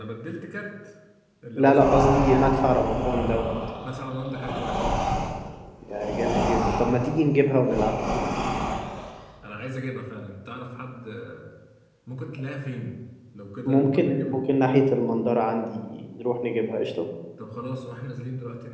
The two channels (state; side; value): identical; both; correlation 1.00